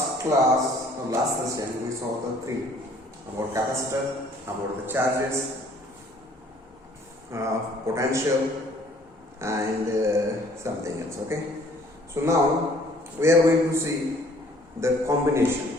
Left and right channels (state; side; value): normal; both; correlation 0.58